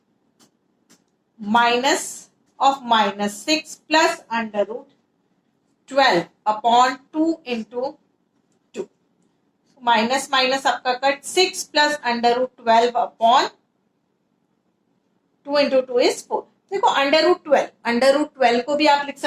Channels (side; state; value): both; identical; correlation 1.00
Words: minus of minus 6 plus under root 12 upon 2 into minus minus आपका cut. 6 plus under root 12 upon 2 into 2 is 4. देखो अंडर रूट 12 को भी आप लिख